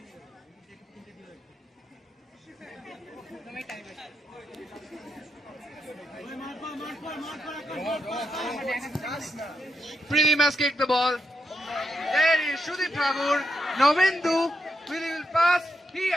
Pridim has kicked the ball. There is Shudip Thakur. Novendu. Will pass. He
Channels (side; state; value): both; normal; correlation 0.83